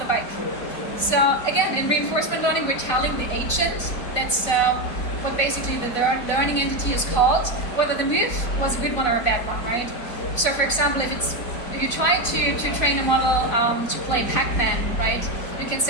bike. So again, in reinforcement learning, we're telling the agent, that's what basically the learning entity is called, whether the move was a good one or a bad one, right? So for example, if you try to train a model to play Pac-Man, right? You can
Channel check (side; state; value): right; late; 4.1 ms